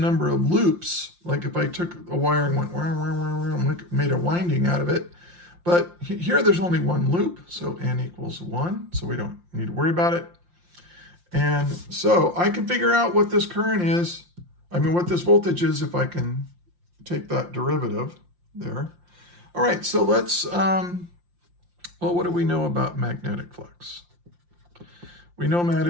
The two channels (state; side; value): late; left; 5.7 ms